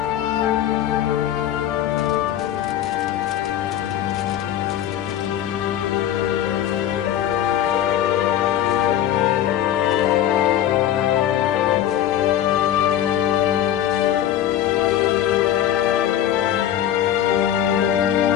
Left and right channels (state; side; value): quieter; right; 11.3 dB